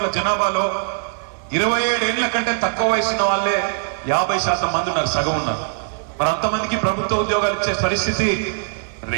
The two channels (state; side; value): silent; left; digital silence